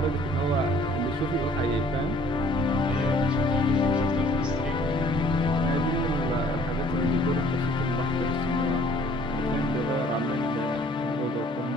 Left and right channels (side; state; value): both; normal; correlation 0.57